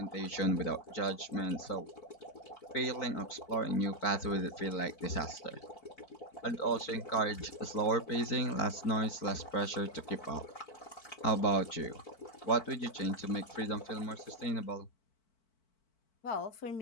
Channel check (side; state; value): right; late; 4.5 ms